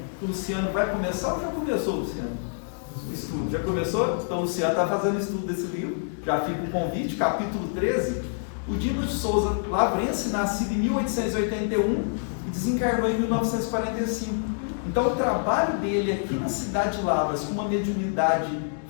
que o Luciano vai começar ou já começou, Luciano? O estudo, já começou? Então o Luciano está fazendo estudo desse livro, já fica o convite, capítulo 13. O Dimas de Souza, lavrense, nascido em 1881 e desencarnou em 1945. Então o trabalho dele aqui na cidade de Lavras, com uma mediunidade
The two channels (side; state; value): right; silent; digital silence